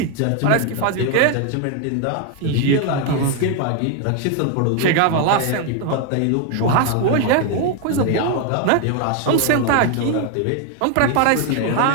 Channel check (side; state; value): both; different; correlation 0.01